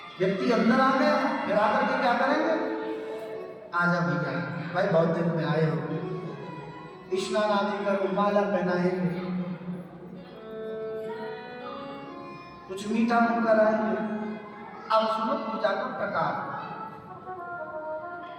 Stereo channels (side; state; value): both; identical; correlation 1.00